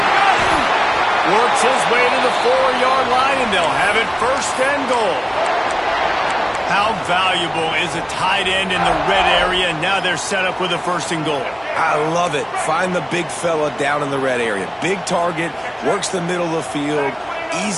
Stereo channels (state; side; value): identical; both; correlation 1.00